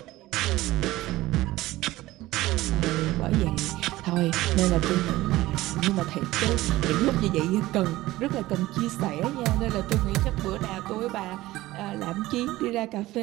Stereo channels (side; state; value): left; quieter; 17.4 dB